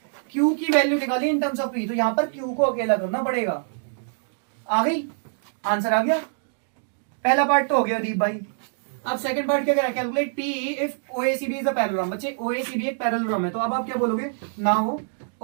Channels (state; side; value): silent; left; digital silence